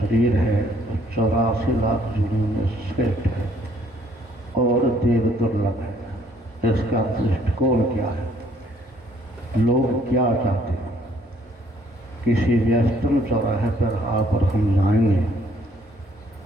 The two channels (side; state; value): both; normal; correlation 0.64